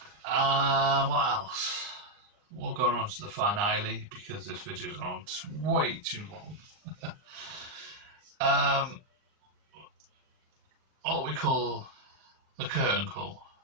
What else? We'll go on to the finale because this video's gone on way too long. What we call the curtain call.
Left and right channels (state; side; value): late; left; 39 ms